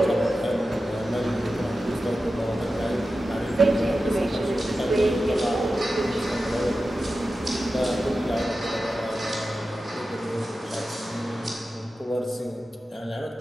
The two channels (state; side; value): normal; both; correlation 0.93